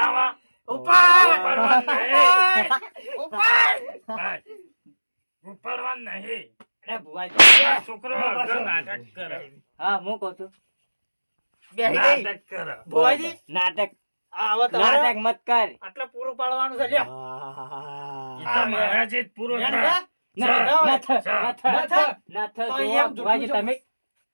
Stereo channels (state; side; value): inverted; both; correlation -1.00